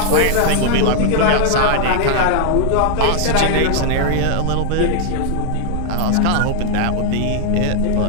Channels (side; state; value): both; different; correlation 0.00